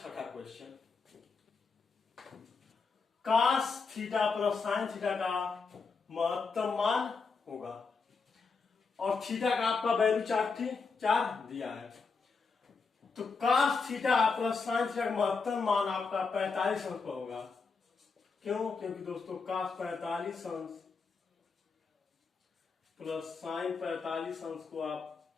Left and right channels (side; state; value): right; quieter; 4.8 dB